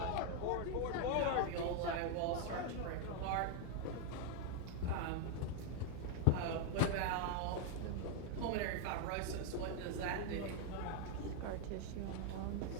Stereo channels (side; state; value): both; different; correlation 0.00